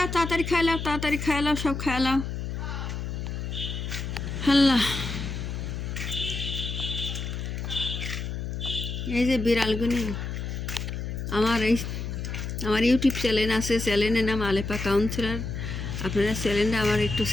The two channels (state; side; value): noise; left; hum, 5 dB below the sound